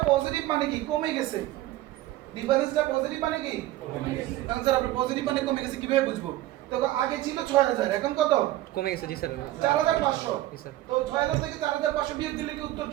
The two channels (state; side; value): quieter; left; 15.6 dB